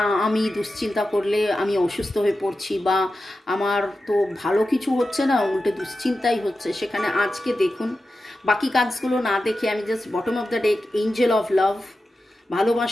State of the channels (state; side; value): normal; both; correlation 0.92